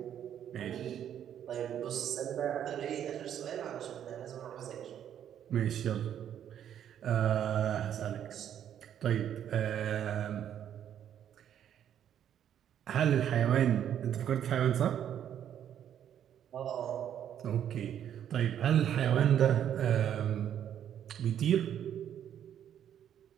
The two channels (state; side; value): quieter; left; 9.8 dB